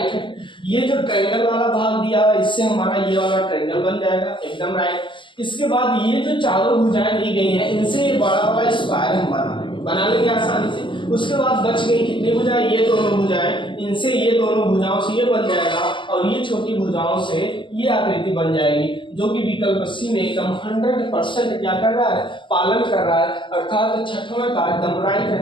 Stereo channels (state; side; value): late; right; 0.24 ms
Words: है। ये जो ट्रायंगल वाला भाग दिया है, इससे हमारा ये वाला ट्रायंगल बन जाएगा, एकदम राइट। इसके बाद ये जो चारों भुजाएं दी गई हैं, इनसे ये बड़ा वाला स्क्वायर हम बना लेंगे आसानी से। उसके बाद बच गई कितनी भुजाएं, ये दोनों भुजाएं, इनसे ये दोनों भुजाओं से ये बन जाएगा, और ये छोटी भुजाओं से ये आकृति बन जाएगी, जो कि विकल्प सी में एकदम 100% क्या कर रहा है, पालन कर रहा है। अर्थात छठवां का एकदम राइट